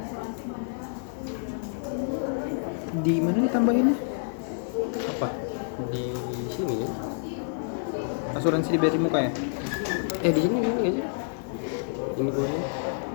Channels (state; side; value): silent; right; digital silence